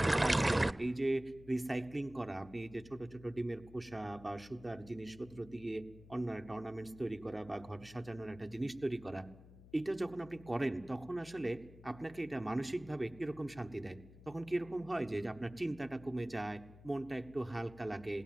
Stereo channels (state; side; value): noise; left; hum, 19 dB below the sound